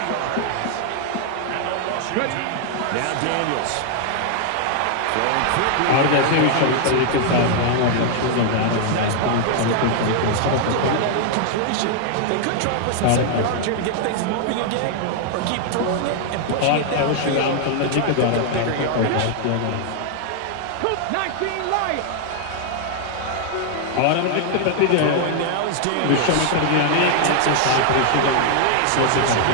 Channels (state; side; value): different; both; correlation 0.00